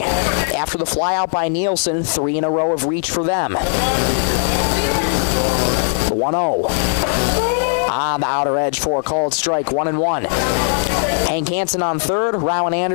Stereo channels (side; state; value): right; silent; 63 dB below the other